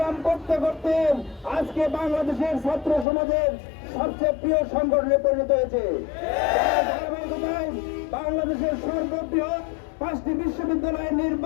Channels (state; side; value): drops out; right; at 3.1 s